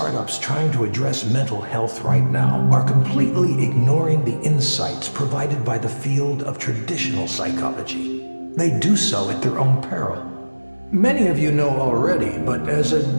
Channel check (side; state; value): both; inverted; correlation -1.00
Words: trying to address mental health right now are completely ignoring the insights provided by the field of traditional psychology. They do so at their own peril. Many of you know already, but as a